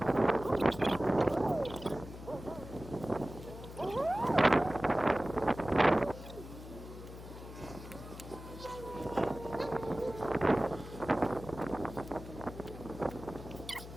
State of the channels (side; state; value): left; noise; hum, 13 dB below the sound